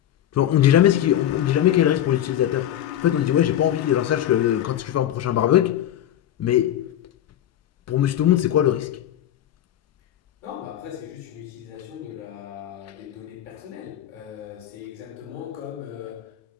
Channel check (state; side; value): quieter; right; 11.4 dB